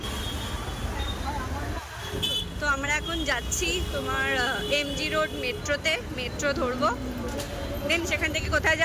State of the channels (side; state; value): both; identical; correlation 1.00